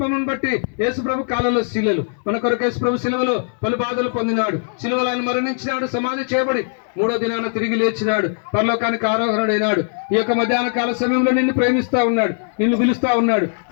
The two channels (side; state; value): right; silent; 66 dB below the other